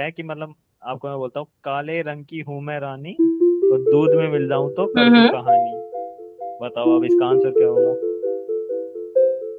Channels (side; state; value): both; identical; correlation 1.00